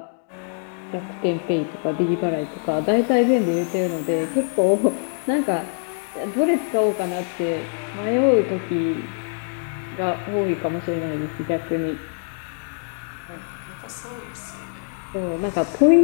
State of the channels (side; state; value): right; silent; 63 dB below the other